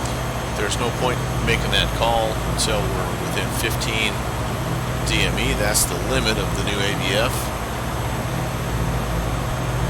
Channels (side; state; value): both; identical; correlation 1.00